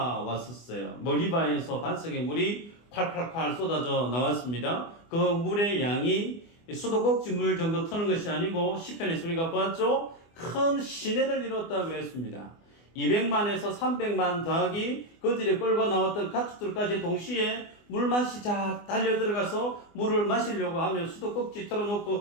머리바에서 반석에 물이 콸콸콸 쏟아져 나왔습니다. 그 물의 양이 수도꼭지 물 정도 트는 것이 아니고 시편에서 우리가 보았죠. 큰 시내를 이뤘다 그랬습니다. 200만에서 300만 더하기 그들이 끌고 나왔던 가축들까지 동시에 물맛이 쫙 달려 들어가서 물을 마시려고 하면 수도꼭지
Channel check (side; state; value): right; late; 24 ms